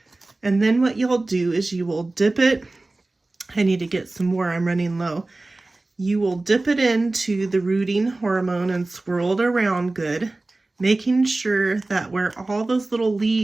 And then what you'll do is you will dip it. I need to get some more, I'm running low. You will dip it into the rooting hormone and swirl it around good, making sure that where all those little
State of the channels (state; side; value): quieter; left; 3.0 dB